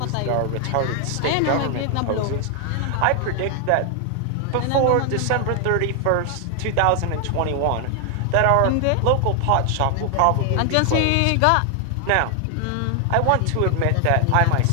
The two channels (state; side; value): different; both; correlation 0.00